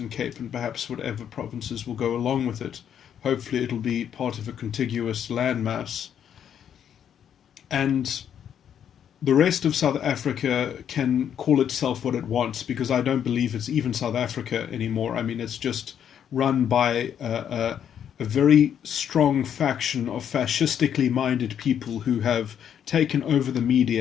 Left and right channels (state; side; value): quieter; right; 9.0 dB